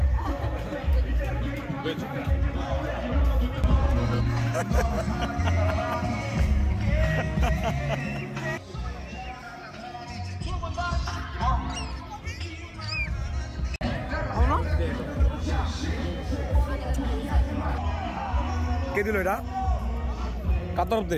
কে দিল এটা? কার তরফ দে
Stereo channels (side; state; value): both; identical; correlation 1.00